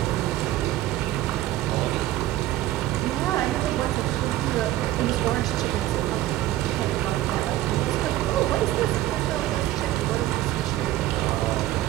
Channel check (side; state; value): left; quieter; 14.6 dB